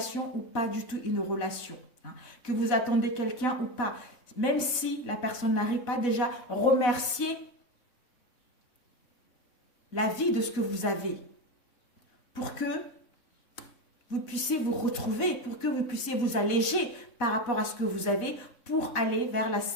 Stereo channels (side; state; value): right; late; 4.0 ms